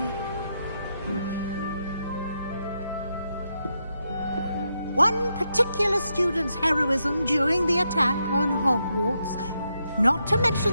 One particular student's heroism during the attack on Hogwarts, not to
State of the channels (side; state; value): both; inverted; correlation -0.82